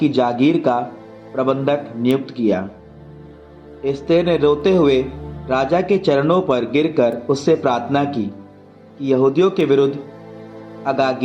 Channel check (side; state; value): both; identical; correlation 1.00